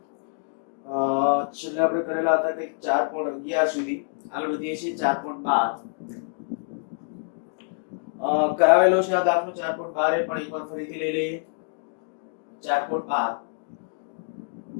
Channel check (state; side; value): silent; right; digital silence